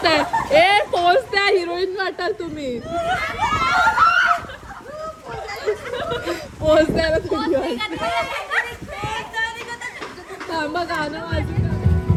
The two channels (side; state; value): both; identical; correlation 1.00